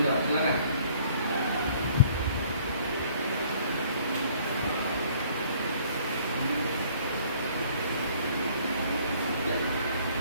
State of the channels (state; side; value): inverted; both; correlation -0.58